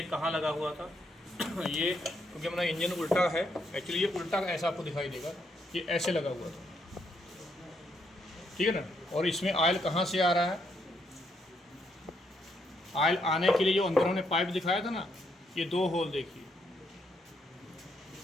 कहाँ लगा हुआ था। ये क्योंकि हमारा इंजन उल्टा है, एक्चुअली ये उल्टा ऐसा आपको दिखाई देगा, ये ऐसे लगा हुआ था, ठीक है ना। और इसमें ऑयल कहाँ से आ रहा है, ऑयल आने के लिए जो अंदर हमने पाइप दिखाया था ना, ये 2 होल देखिए,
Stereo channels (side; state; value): both; normal; correlation 0.76